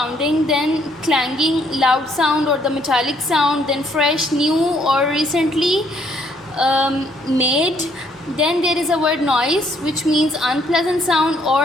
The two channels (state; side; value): normal; both; correlation 0.67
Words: Then clanging, loud sound or the metallic sound. Then fresh, new or recently made. Then there is a word noise, which means unpleasant sound